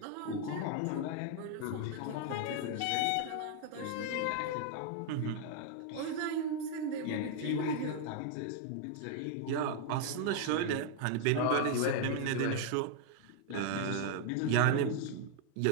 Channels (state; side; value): different; both; correlation 0.00